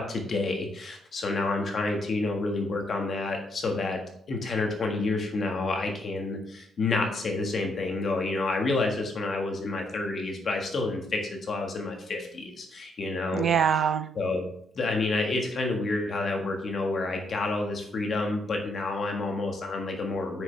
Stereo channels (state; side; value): normal; both; correlation 0.74